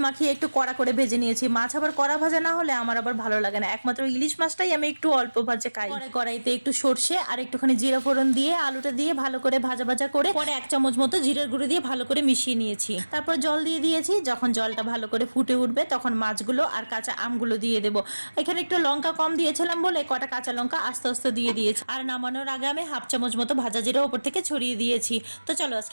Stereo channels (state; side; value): inverted; both; correlation -1.00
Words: মাখিয়ে একটু কড়া করে ভেজে নিয়েছি। মাছ আবার কড়া ভাজা না হলে আমার আবার ভালো লাগে না, একমাত্র ইলিশ মাছটাই আমি একটু অল্প ভাজে খাই। কড়াইতে একটু সর্ষে আর একটুখানি জিরা ফোড়ন দিয়ে আলুটা দিয়ে ভালো করে ভাজা ভাজা করে পরে 1 চামচ মতো জিরার গুঁড়ো দিয়ে ভালো করে মিশিয়ে নিয়েছি। তারপর জল দিয়ে দিয়েছি, যখন জলটা ভালো করে ফুটে উঠবে তখন মাছগুলো আর কাঁচা আমগুলো দিয়ে দেবো। এখানে একটু লঙ্কা কম দিয়েছিলাম বলে কটা কাঁচা লঙ্কা আস্তে আস্তে দিয়ে দিয়েছি, আর নামানোর আগে আমি 1/2 চামচ মতো ভাজা জিরা উপর থেকে ছড়িয়ে দিয়েছি। তো চলো